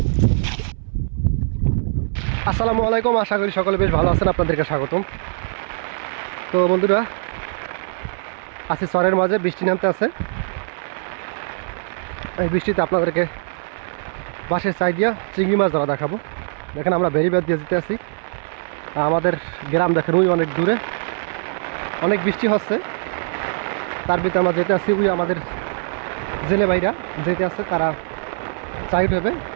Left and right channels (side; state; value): left; silent; 64 dB below the other